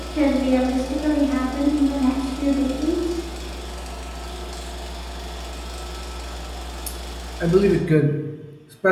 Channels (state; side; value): identical; both; correlation 1.00